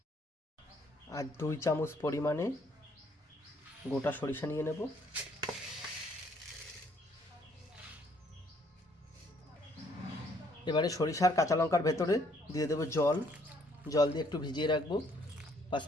আর 2 চামচ পরিমাণে গোটা সরিষা নিয়ে নেব। এবারে সরিষার কাঁচা লঙ্কার ভেতরে দিয়ে দেবো জল দিয়ে একটু ভিজিয়ে রাখবো 5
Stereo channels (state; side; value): normal; both; correlation 0.66